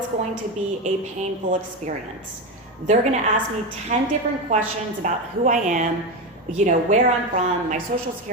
going to be a painful experience. They're gonna ask me 10 different questions about who I am, where I'm from, my social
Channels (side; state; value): both; normal; correlation 0.15